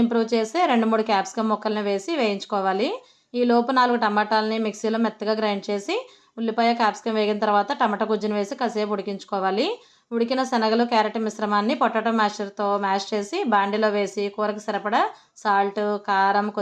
ఇంప్రూవ్ చేసే 2-3 క్యాప్సికమ్ ముక్కల్ని వేసి వేయించుకోవాలి. ఈ లోపు 4 టమాటాలని మిక్సీలో మెత్తగా గ్రైండ్ చేసి ఉల్లిపాయ క్యాప్సికమ్ వేగిన తర్వాత టమాటా గుజ్జును వేసి కాసేపు ఉడికించుకోవాలి. ఉడికిన శనగలు, క్యారెట్ మిశ్రమాన్ని పొటాటో మ్యాషర్తో మ్యాష్ చేసి బాండీలో వేసి కూరకు సరిపడా సాల్ట్, కారం,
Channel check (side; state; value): both; identical; correlation 1.00